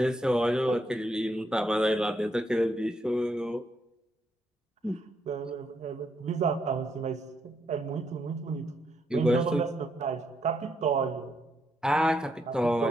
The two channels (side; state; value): both; normal; correlation 0.77